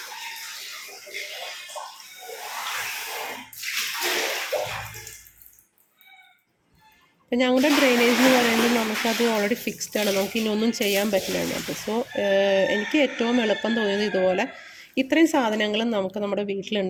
ഞങ്ങളുടെ ഡ്രെയിനേജ് എന്ന് പറയുന്നത് നമുക്കത് ഓൾറെഡി ഫിക്സ്ഡ് ആണ്, നമുക്ക് ഇനി ഒന്നും ചെയ്യാൻ പറ്റില്ല അതിനകത്ത്. സോ എനിക്ക് ഏറ്റവും എളുപ്പം തോന്നിയത് ഇതുപോലെ ഇത്രയും സാധനങ്ങളും നമുക്ക് നമ്മുടെ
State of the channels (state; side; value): identical; both; correlation 1.00